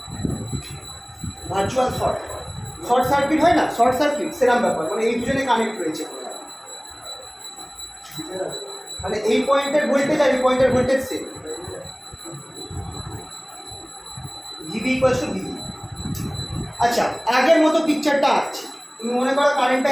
Virtual short, short circuit হয় না, শর্ট সার্কিট সেরকম ব্যাপার, মানে এই দুজনে কানেক্ট রয়েছে, মানে এই পয়েন্টের ভোল্টেজ আর এই পয়েন্টের voltage same. VV equals to VV. আচ্ছা, আগের মতো পিকচারটা আছে, তুমি মনে করো কারেন্টটা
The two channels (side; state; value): both; identical; correlation 1.00